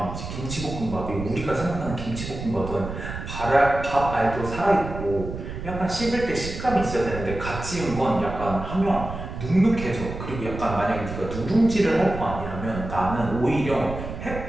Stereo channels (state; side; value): noise; right; rumble, 8 dB below the sound